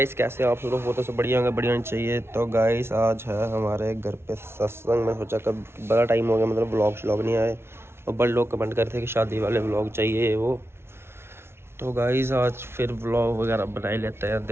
कैसे आप लोग? वो तो सब बढ़िया होंगे, बढ़िया होनी चाहिए। तो गाइस आज है हमारे घर पे सत्संग। मैं सोचा कब बड़ा टाइम हो गया, मतलब व्लॉग नहीं आए, और बड़े लोग कमेंट करते हैं कि शादी वाले व्लॉग चाहिए वो। तो गाइस आज फिर व्लॉग वगैरह बना ही लेते हैं।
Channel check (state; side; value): late; left; 0.12 ms